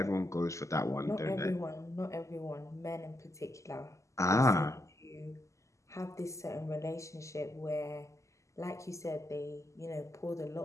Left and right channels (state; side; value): late; right; 0.15 ms